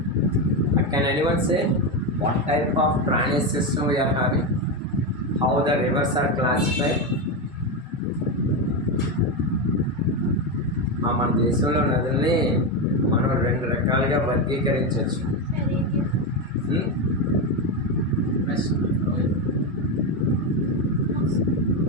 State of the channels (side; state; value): both; normal; correlation 0.11